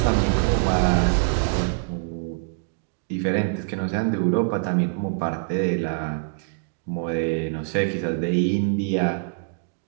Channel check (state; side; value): silent; left; digital silence